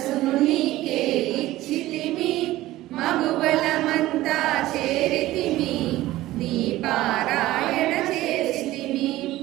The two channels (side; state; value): left; quieter; 16.4 dB